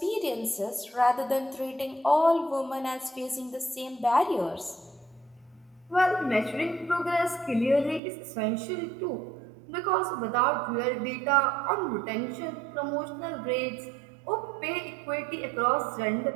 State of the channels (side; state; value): left; drops out; at 8.0 s